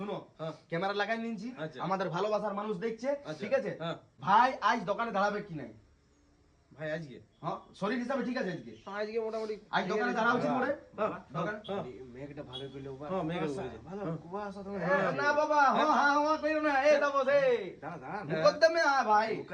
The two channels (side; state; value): both; identical; correlation 1.00